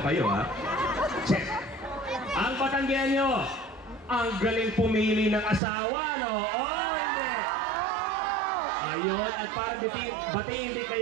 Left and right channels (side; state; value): left; drops out; at 5.6 s